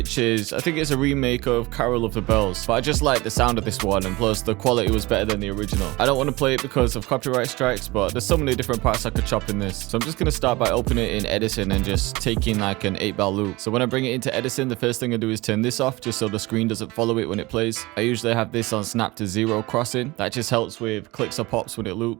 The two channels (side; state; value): left; quieter; 21.7 dB